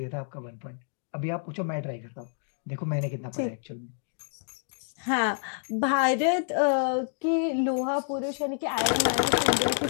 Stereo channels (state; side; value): silent; right; digital silence